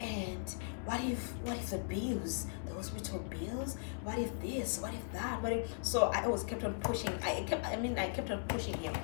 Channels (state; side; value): silent; right; digital silence